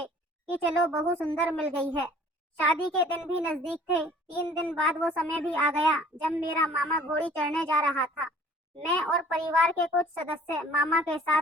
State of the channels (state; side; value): normal; both; correlation 0.52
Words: कि चलो बहू सुंदर मिल गई है। शादी के दिन भी नजदीक थे। 3 दिन बाद वो समय भी आ गया जब मेरा मामा घोड़ी चढ़ने जा रहा था। मैं और परिवार के कुछ सदस्य मामा के